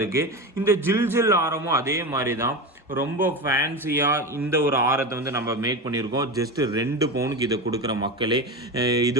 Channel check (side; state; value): both; normal; correlation 0.22